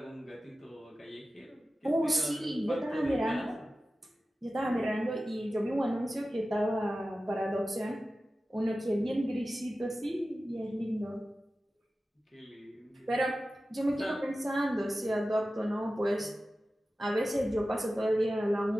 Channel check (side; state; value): both; normal; correlation 0.95